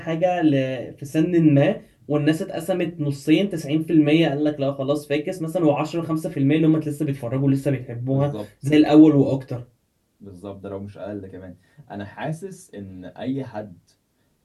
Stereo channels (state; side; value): identical; both; correlation 1.00